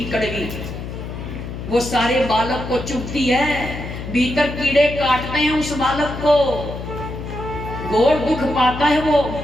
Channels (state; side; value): noise; left; hum, 8 dB below the sound